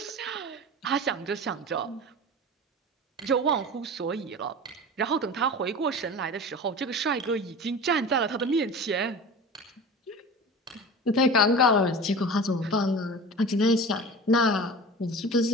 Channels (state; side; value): normal; both; correlation 0.34